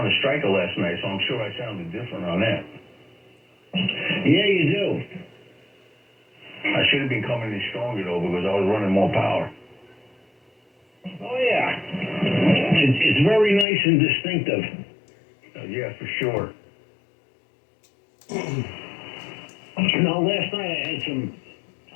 Striker last night, so I'm sure I sounded different on that. Yeah, you do. I should have been coming in stronger, though, because I was running more power. Oh, yeah. It's very nice and distinctive. Yeah, for sure. Last night I had some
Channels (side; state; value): right; drops out; at 13.7 s